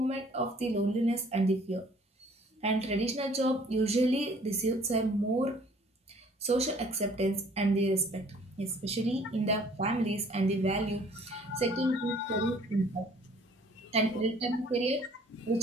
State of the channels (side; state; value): both; normal; correlation 0.56